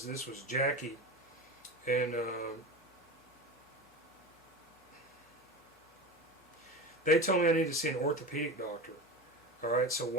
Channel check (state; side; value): normal; both; correlation 0.27